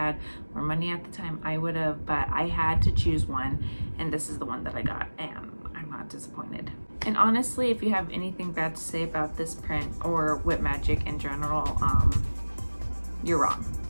more money at the time, I would have, but I had to choose one, and this is the one that I got, and I'm not disappointed. And honestly, if you have anything bad to say about this print or Whip Magic in general, you're wrong.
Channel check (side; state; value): both; inverted; correlation -1.00